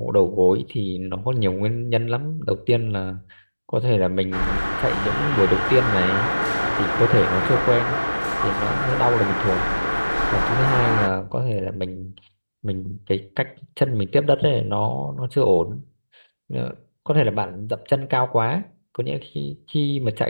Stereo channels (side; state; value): both; inverted; correlation -1.00